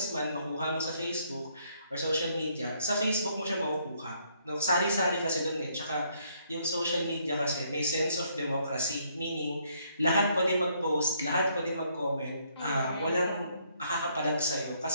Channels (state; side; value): inverted; both; correlation -0.69